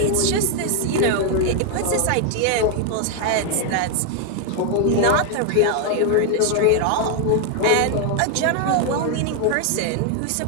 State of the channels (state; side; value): different; both; correlation 0.00